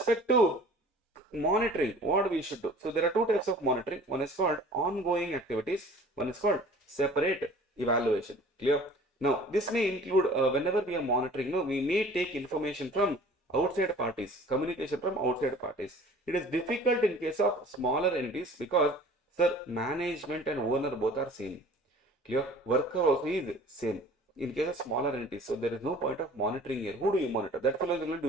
to monitoring, what we should do. So there are two types of monitoring. One is called ongoing activities. One is called separate evaluation. Clear? Now, this may include whenever we are monitoring, we may take information from outside parties, communication from outside parties. It is difficult in case of smaller entities because, sir, management and owner both are same. Clear? Worker also is same. In case of smaller entities, so there is no point of monitoring here. Who do you monitor? That fellow is only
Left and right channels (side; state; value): both; normal; correlation 0.47